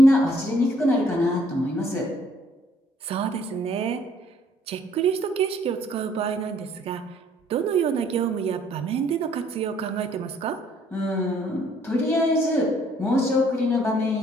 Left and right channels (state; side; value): normal; both; correlation 0.63